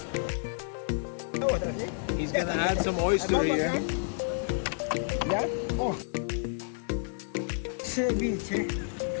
He's gonna add some oyster here. ¿Ya? Oh. Ceviche,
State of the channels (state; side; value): silent; right; digital silence